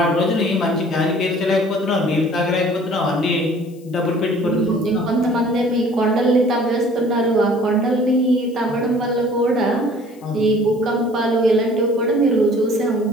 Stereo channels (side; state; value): left; noise; hiss, 29 dB below the sound